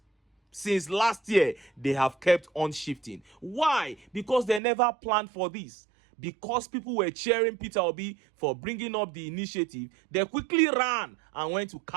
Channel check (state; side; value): drops out; left; at 4.6 s